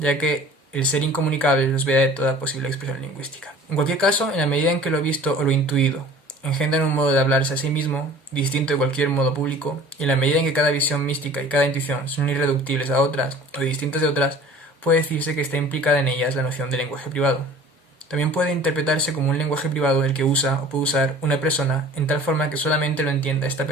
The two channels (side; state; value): both; normal; correlation 0.46